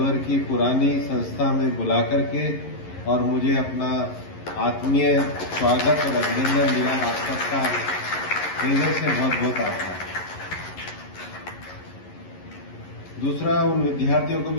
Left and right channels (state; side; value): late; right; 11 ms